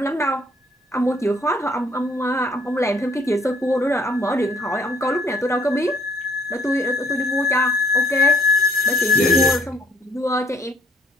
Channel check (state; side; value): normal; both; correlation 0.64